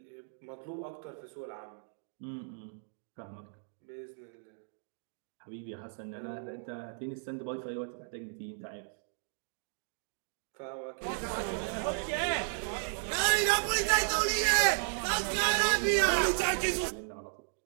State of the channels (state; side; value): silent; left; digital silence